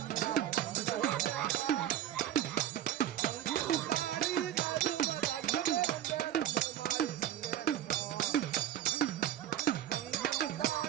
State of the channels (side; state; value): left; quieter; 11.7 dB